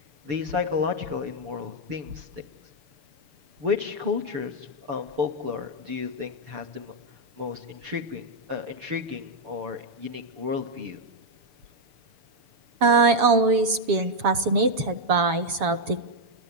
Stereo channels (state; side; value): late; left; 7.3 ms